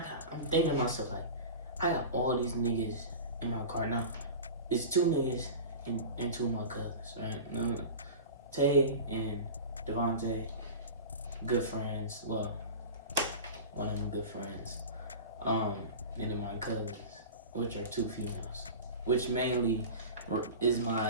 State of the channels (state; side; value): inverted; both; correlation -0.32